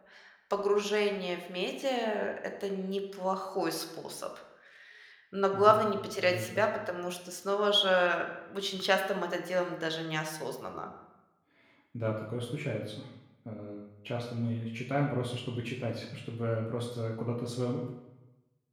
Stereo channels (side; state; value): both; identical; correlation 1.00